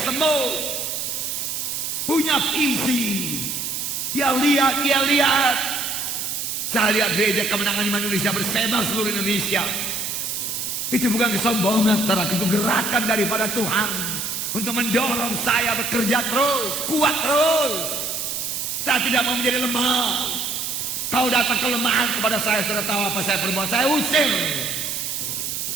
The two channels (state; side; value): noise; right; hiss, 3 dB below the sound